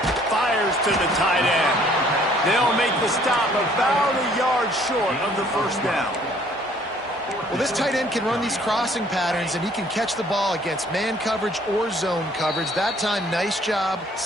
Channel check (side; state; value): both; normal; correlation 0.59